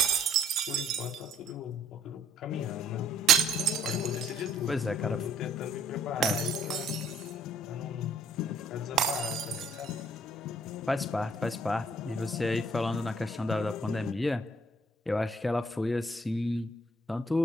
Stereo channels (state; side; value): normal; both; correlation 0.63